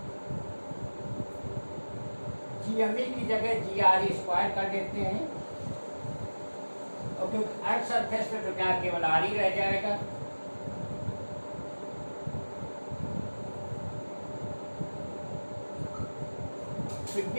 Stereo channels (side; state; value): both; inverted; correlation -1.00